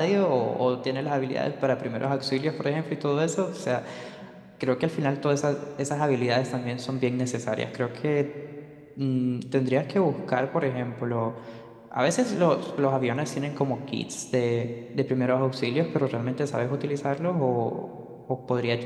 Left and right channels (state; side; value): identical; both; correlation 1.00